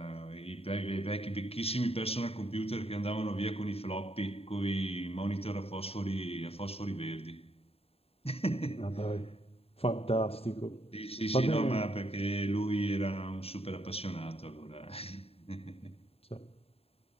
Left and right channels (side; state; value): right; late; 0.29 ms